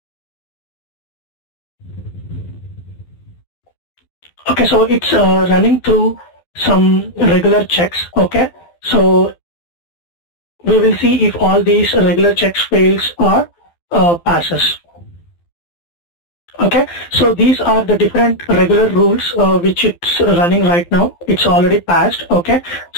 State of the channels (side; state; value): right; late; 12 ms